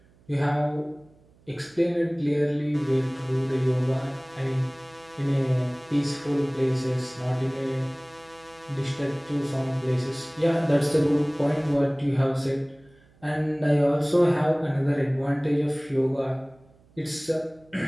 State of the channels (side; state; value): right; noise; hum, 30 dB below the sound